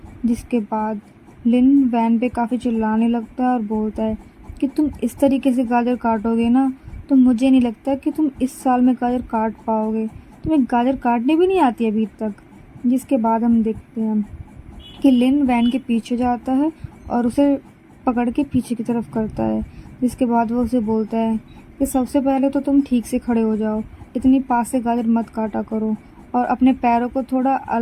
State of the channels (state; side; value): identical; both; correlation 1.00